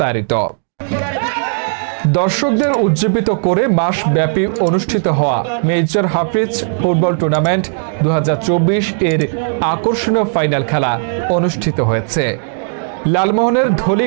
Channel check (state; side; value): silent; left; 64 dB below the other